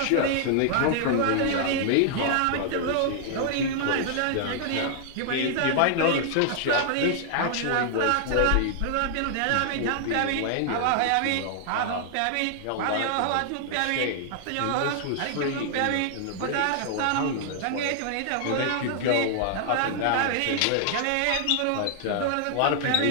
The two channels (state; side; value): different; both; correlation -0.01